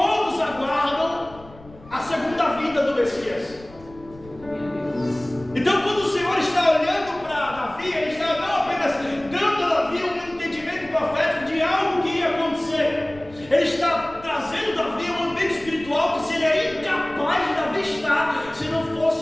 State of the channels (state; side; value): noise; left; rumble, 21 dB below the sound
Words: aguardam a segunda vinda do Messias. Então, quando o Senhor está olhando para Davi, ele está não apenas dando a Davi um entendimento profético de algo que ia acontecer, ele está trazendo Davi um ambiente espiritual que seria incapaz de Davi estar se não